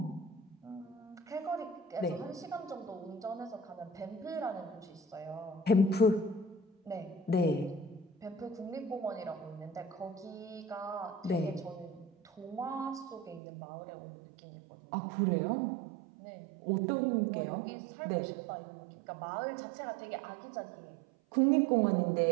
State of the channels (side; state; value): left; drops out; at 13.4 s